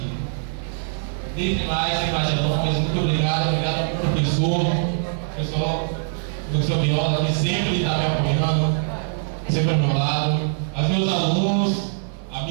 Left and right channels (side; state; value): left; silent; 64 dB below the other